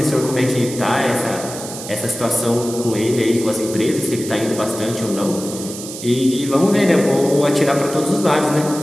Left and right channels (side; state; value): right; noise; hiss, 11 dB below the sound